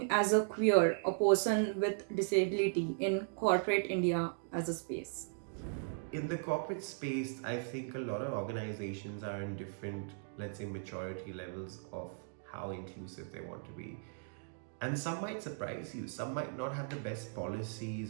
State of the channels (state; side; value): silent; left; digital silence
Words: as a queer, a person with disability in corporate India as a space? In the corporate space, I think a lot of organizations are in different, let's say, maturity levels of how inclusive they want to be. And some might surprise you. Some might not have the best